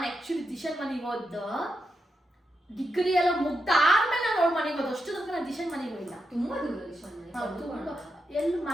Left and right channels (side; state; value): both; normal; correlation 0.85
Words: ಆಕ್ಚುಲಿ ದಿಶನ್ ಮನೆಗೆ ಹೋದ ಡಿಗ್ರಿ ಎಲ್ಲ ಮುಗ್ದಾದ್ಮೇಲೆ ನಾನು ಅವಳ ಮನೆಗೆ ಹೋದ. ಅಷ್ಟು ತನಕ ನಾನು ದಿಶನ್ ಮನೆಗೆ ಹೋಗಿಲ್ಲ. ತುಂಬಾ ದೂರ ದಿಶನ್ ಮನೆ ಎಲ್ಲಿ